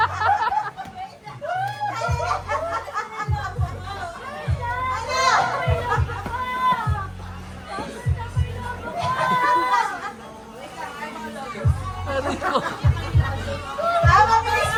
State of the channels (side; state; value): both; identical; correlation 1.00